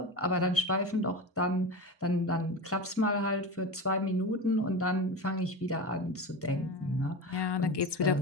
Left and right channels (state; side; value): normal; both; correlation 0.26